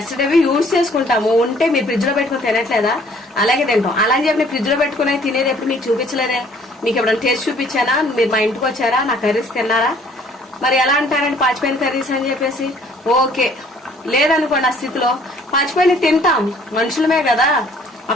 యూజ్ చేసుకుంటాము, ఉంటే మీరు ఫ్రిడ్జ్ లో పెట్టుకుని తినట్లేదా, అలాగే తింటాం. అలా అని చెప్పి ఫ్రిడ్జ్ లో పెట్టుకుని తినేది ఎప్పుడు మీకు చూపించలేదే? మీకు ఎప్పుడైనా టేస్ట్ చూపించానా? మీరు మా ఇంటికి వచ్చారా, నా కర్రీస్ తిన్నారా? మరి ఎలా అంటారండి పాచిపోయిన కర్రీస్ అని చెప్పేసి? ఓకే, లేదనుకోండి ఆ స్థితిలో పాచిపోయిన తింటాం, మనుషులమే కదా. ఆ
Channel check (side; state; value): both; normal; correlation 0.58